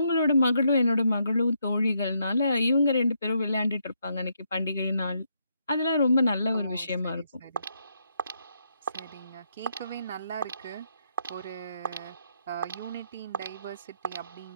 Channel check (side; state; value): both; inverted; correlation -0.77